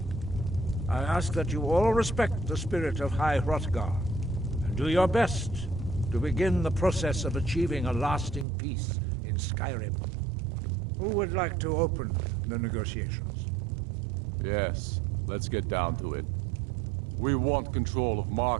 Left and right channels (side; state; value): left; drops out; at 8.5 s